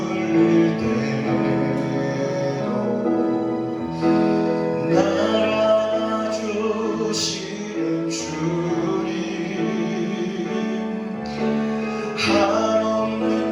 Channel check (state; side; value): identical; both; correlation 1.00